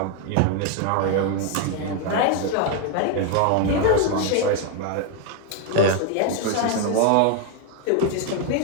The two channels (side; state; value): both; different; correlation 0.01